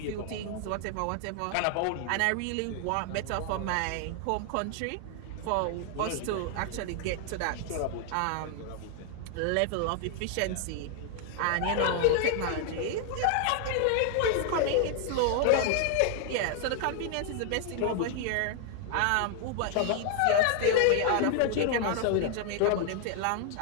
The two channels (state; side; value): different; both; correlation 0.00